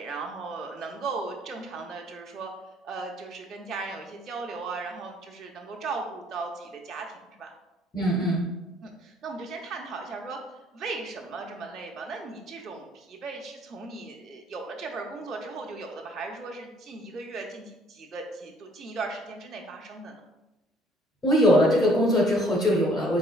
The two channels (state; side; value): normal; both; correlation 0.61